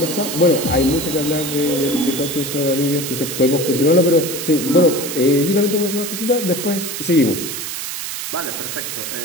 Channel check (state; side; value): noise; right; hiss, 6 dB below the sound